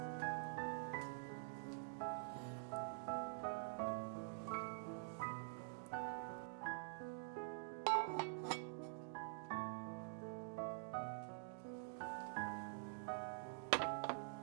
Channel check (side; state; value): left; silent; digital silence